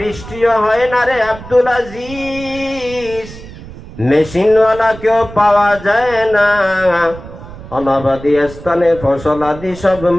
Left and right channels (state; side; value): noise; right; rumble, 15 dB below the sound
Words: হয় না রে আব্দুল আজিজ, মেশিনওয়ালা কেউ পাওয়া যায় না। অনাবাদী স্থানে ফসল আদি সব